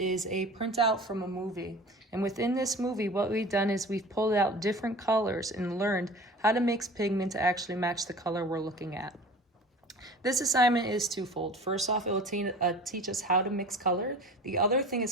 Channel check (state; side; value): normal; both; correlation 0.40